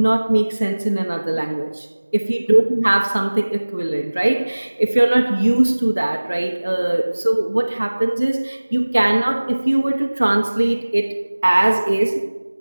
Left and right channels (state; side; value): inverted; both; correlation -1.00